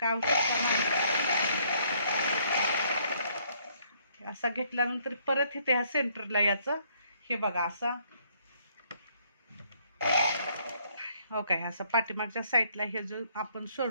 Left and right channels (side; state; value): both; inverted; correlation -0.66